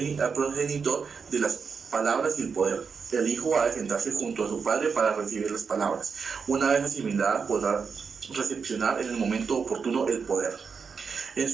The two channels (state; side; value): quieter; left; 5.7 dB